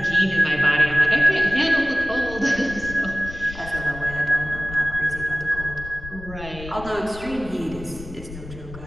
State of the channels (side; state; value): left; noise; rumble, 13 dB below the sound